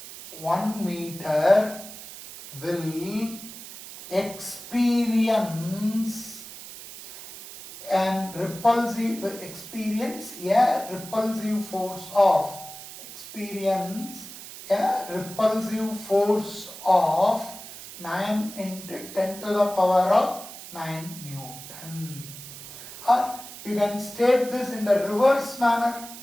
1 meter will experience a repulsive force of 9 into 10 to the power of 9 Newton. Or you can state this in the reverse manner.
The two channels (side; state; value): right; noise; hiss, 14 dB below the sound